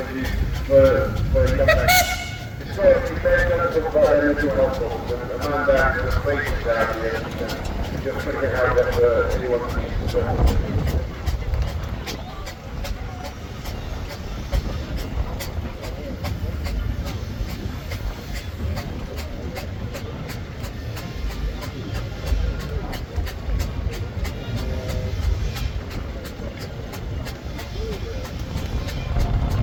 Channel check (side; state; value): both; identical; correlation 1.00